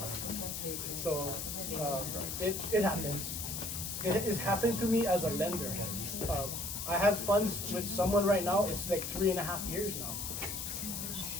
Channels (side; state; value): left; noise; hiss, 4 dB below the sound